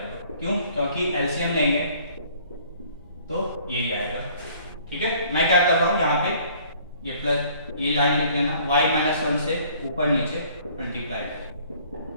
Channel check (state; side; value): inverted; both; correlation -0.57